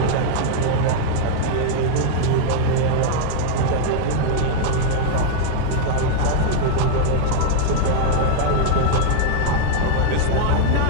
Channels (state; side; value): different; both; correlation -0.01